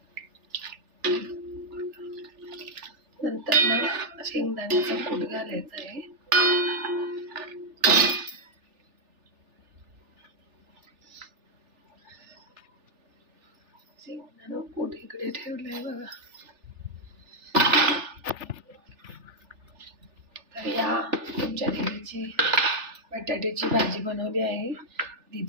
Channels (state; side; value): late; left; 3.4 ms